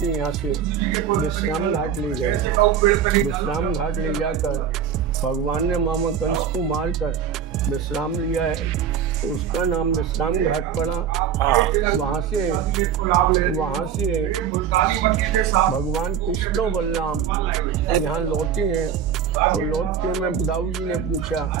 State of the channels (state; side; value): quieter; left; 8.1 dB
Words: यहाँ से विश्राम घाट ले गए। विश्राम घाट ले जाकर भगवान ने मामा कंस को मारकर विश्राम लिया है, तो उसका नाम विश्राम घाट पड़ा। वहाँ से भगवान कृष्ण बलराम यहाँ लौटे हैं। तो लौट के मैं दाऊ जी ने पूछा